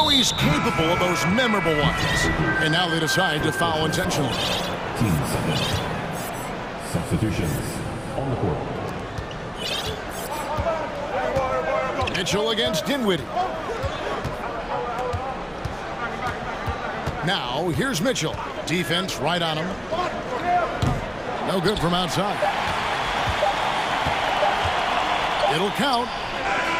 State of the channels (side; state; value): both; identical; correlation 1.00